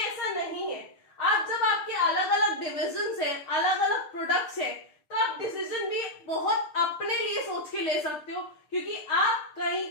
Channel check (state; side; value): late; right; 6.6 ms